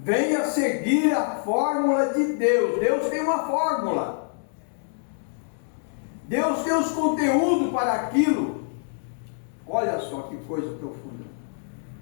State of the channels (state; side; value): silent; right; digital silence